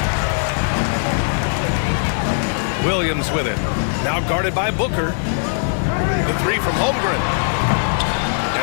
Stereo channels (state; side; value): silent; right; digital silence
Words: Williams with it. Now guarded by Booker. The 3 from Holmgren.